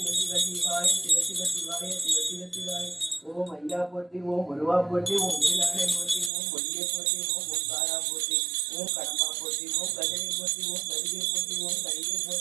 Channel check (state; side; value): drops out; left; at 6.3 s